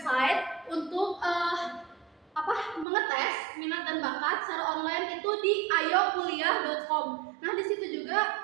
untuk mengetes minat dan bakat secara online itu di ayokuliah.com. Nah di situ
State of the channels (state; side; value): drops out; left; at 2.9 s